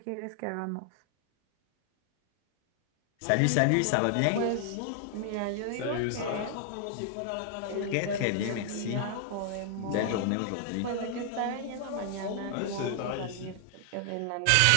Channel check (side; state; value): both; different; correlation 0.00